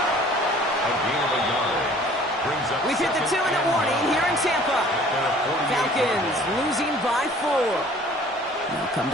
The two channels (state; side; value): normal; both; correlation 0.52